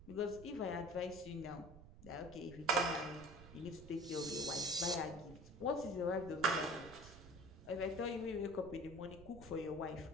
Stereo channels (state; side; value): noise; right; rumble, 17 dB below the sound